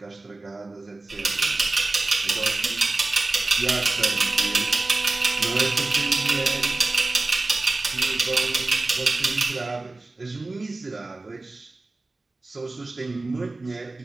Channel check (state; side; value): quieter; left; 3.2 dB